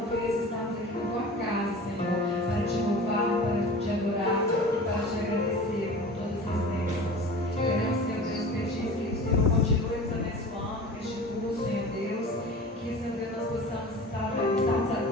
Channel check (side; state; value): both; normal; correlation 0.37